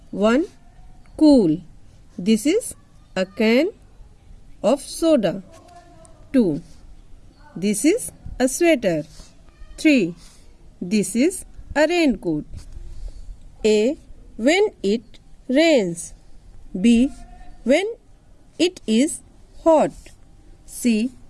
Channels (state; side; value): identical; both; correlation 1.00